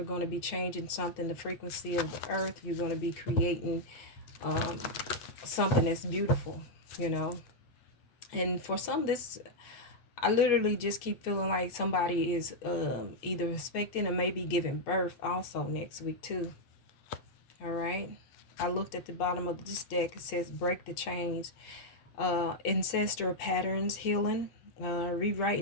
going to be changing something, the frequency of the earth. You're going to be creating something that's beautiful, And for some, I literally just keep feeling like somebody is either expecting or maybe giving birth also next week too. All right. I looked at the bottom of this deck. It says break the chains. Ancestral patterns healing.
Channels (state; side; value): late; right; 8.4 ms